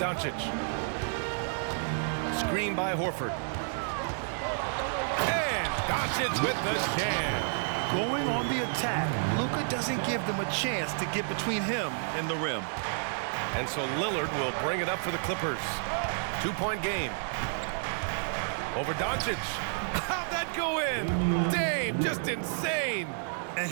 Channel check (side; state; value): left; silent; digital silence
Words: Screen by Horford. And Doncic with the jam. Going on the attack, Luka doesn't give them a chance to get between him and the rim. And so Lillard will bring it up for the Clippers. 2-point game. Over Doncic. How'd that go in? Dame, just insane. And